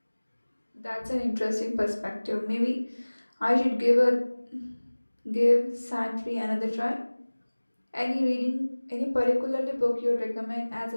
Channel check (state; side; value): inverted; both; correlation -1.00